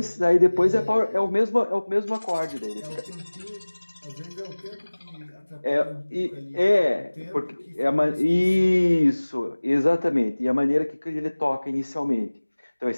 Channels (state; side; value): inverted; both; correlation -1.00